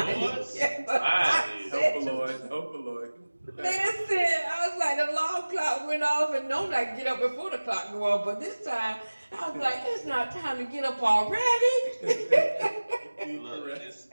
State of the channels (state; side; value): inverted; both; correlation -1.00